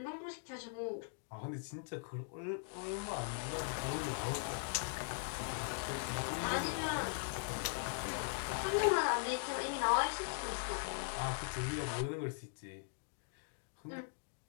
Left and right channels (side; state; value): right; silent; digital silence